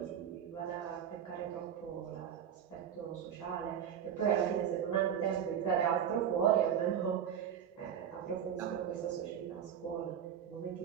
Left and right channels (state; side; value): quieter; left; 8.8 dB